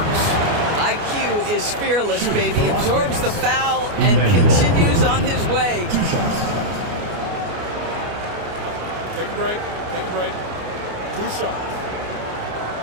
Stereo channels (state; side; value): late; left; 29 ms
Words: IQ is fearless, baby. Absorbs the foul and continues on his way. 2 shots. Take a break. Take a break. 2 shots.